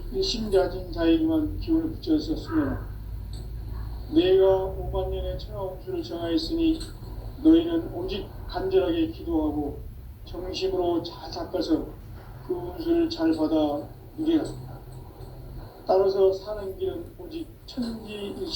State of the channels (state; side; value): identical; both; correlation 1.00